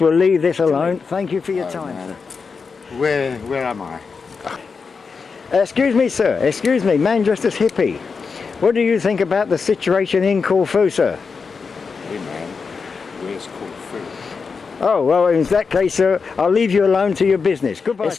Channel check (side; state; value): right; quieter; 5.1 dB